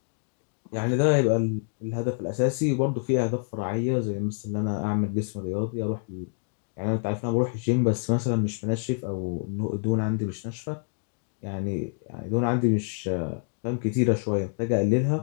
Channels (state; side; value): silent; right; digital silence